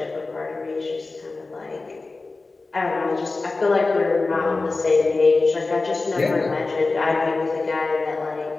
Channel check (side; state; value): right; quieter; 3.6 dB